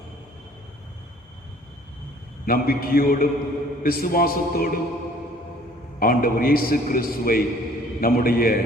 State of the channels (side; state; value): both; normal; correlation 0.55